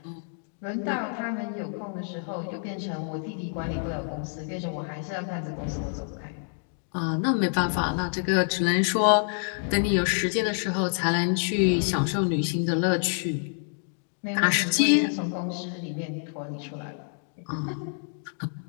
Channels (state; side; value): silent; right; 60 dB below the other